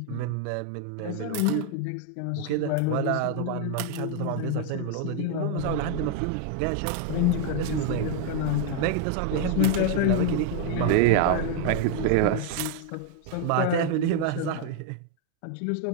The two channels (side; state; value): both; different; correlation 0.00